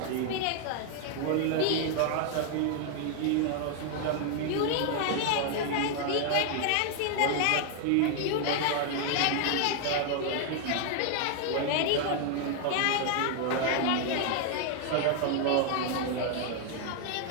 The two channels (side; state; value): both; different; correlation 0.00